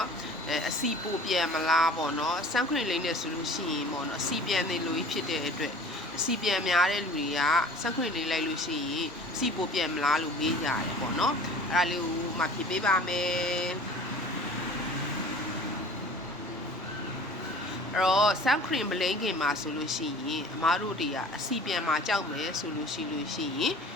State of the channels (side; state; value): both; normal; correlation 0.45